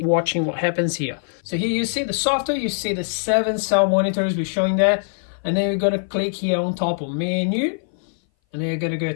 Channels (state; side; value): silent; right; 59 dB below the other